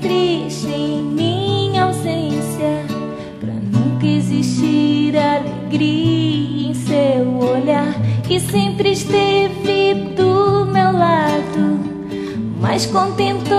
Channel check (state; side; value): identical; both; correlation 1.00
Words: em minha ausência, pra nunca existir alegria em seu olhar, que sempre esteve do meu lado, mas